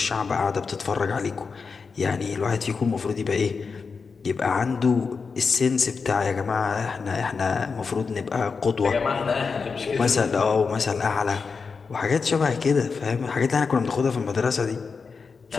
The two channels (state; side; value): quieter; right; 5.1 dB